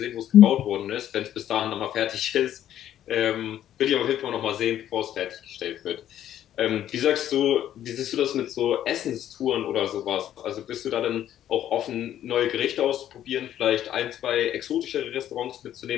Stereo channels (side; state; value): right; quieter; 11.4 dB